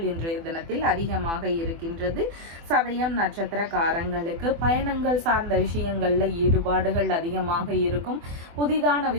இன்றைய தினத்தில் அதிகமாக இருக்கின்றது. சதயம் நட்சத்திரக்காரங்களுக்கு பயணங்கள் சார்ந்த விஷயங்கள்ல ஈடுபாடுகள் அதிகமாக இருக்கும். புதிதான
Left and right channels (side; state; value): left; late; 24 ms